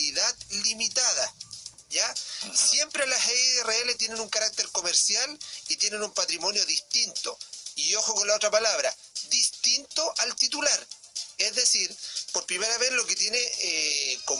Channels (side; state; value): both; identical; correlation 1.00